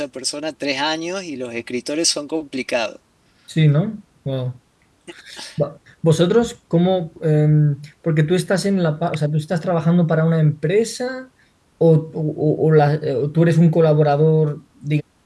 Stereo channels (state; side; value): identical; both; correlation 1.00